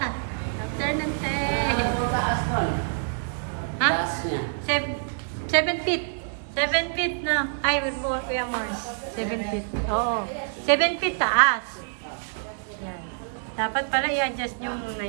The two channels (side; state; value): left; silent; digital silence